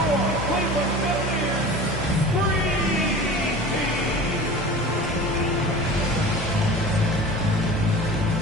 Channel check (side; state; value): both; normal; correlation 0.37